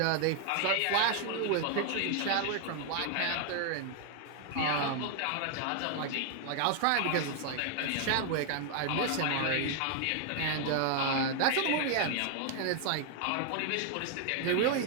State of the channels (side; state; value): both; different; correlation 0.00